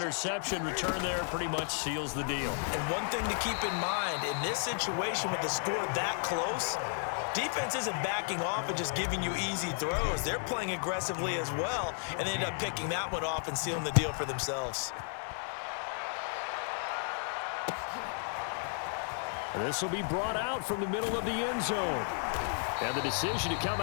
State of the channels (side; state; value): right; silent; 56 dB below the other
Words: return there pretty much seals the deal. And one thing to keep in mind, in this situation with the score that close, defense isn't backing off and just giving you easy throws. They're playing aggressively as well, and they end up picking that one off and sealing the deal for themselves. This will be brought out from the middle of the end zone. And the decision to come